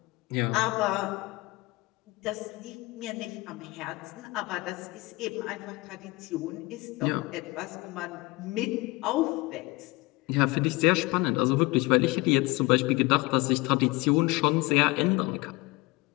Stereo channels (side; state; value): right; quieter; 22.8 dB